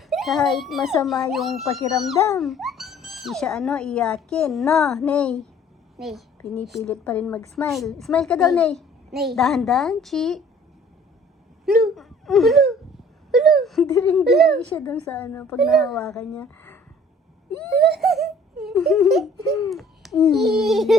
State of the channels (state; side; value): normal; both; correlation 0.53